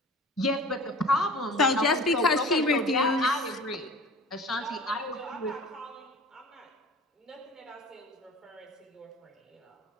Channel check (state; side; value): normal; both; correlation 0.41